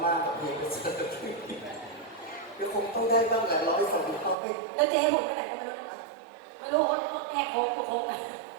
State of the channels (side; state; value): left; drops out; at 4.4 s